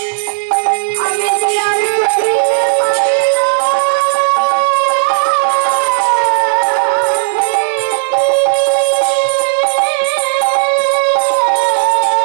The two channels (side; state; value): left; silent; digital silence